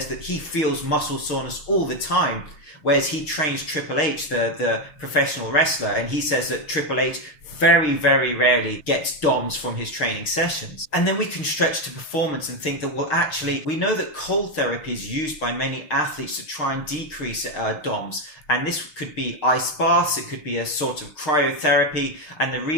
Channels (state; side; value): late; right; 6.5 ms